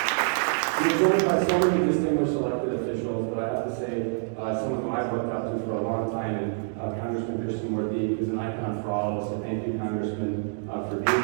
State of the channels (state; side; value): silent; left; digital silence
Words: We're joined by so many distinguished elected officials, but I have to say, someone who I've looked up to for a long time, and Congressman Krishnamurthy is an icon for all of us. So thank you, Congressman, for